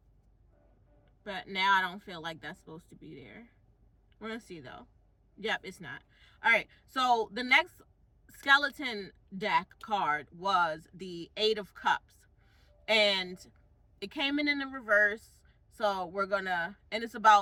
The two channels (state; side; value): identical; both; correlation 1.00